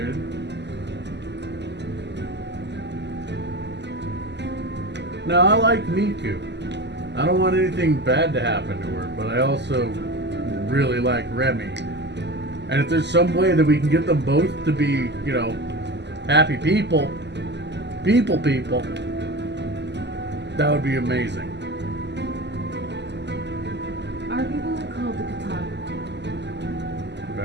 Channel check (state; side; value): late; left; 0.50 ms